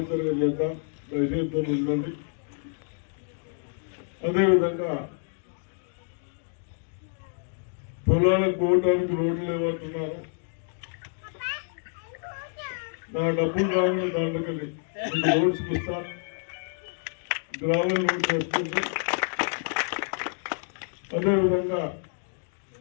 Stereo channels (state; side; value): silent; right; 59 dB below the other